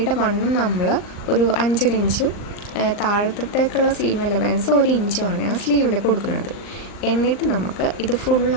വണ്ണം നമ്മൾ ഒരു 5 ഇഞ്ചും താഴത്തേക്കുള്ള സീം അലവൻസ് 1 ഇഞ്ചുമാണ് ഞാൻ സ്ലീവിൽ കൊടുക്കുന്നത്. എന്നിട്ട് നമുക്ക് ഇത്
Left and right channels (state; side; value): late; right; 39 ms